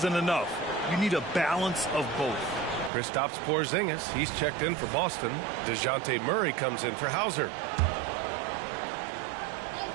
enough. You need a balance of both. Kristaps Porzingis, he's checked in for Boston. DeJounte Murray comes in for Hauser.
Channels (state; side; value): drops out; left; at 2.9 s